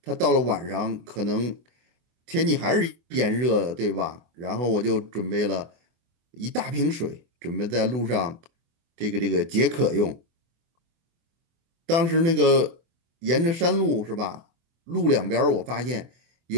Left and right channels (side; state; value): left; late; 24 ms